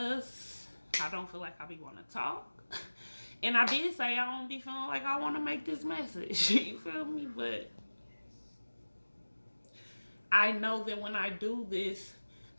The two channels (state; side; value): inverted; both; correlation -1.00